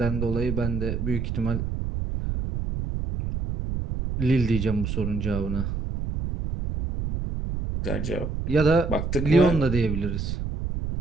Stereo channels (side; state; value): right; noise; rumble, 3 dB below the sound